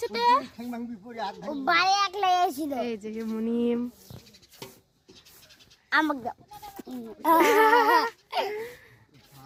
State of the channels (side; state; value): both; identical; correlation 1.00